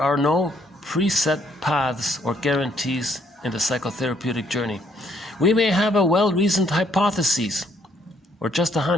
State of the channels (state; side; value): normal; both; correlation 0.69